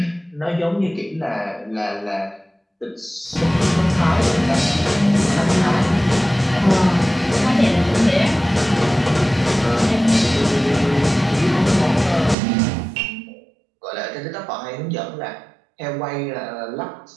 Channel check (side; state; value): left; drops out; at 12.4 s